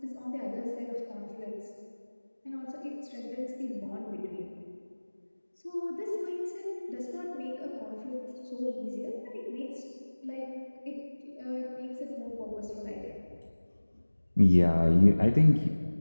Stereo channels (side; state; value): both; inverted; correlation -1.00